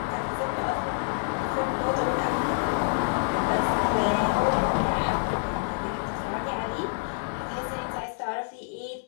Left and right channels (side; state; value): right; silent; 57 dB below the other